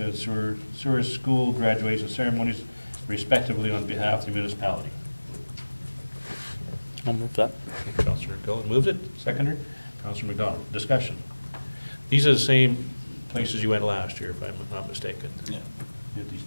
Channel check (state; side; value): inverted; both; correlation -1.00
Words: Sewer School graduation ceremonies respectively on behalf of the municipality. I'll move that. Okay, Councillor Gullett moved it, seconder. Councillor McDonald, discussion. These are the same places you went last year, if I'm not mistaken. Yeah. Did these